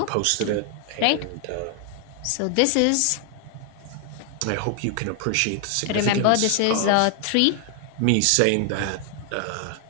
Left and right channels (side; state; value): both; different; correlation 0.00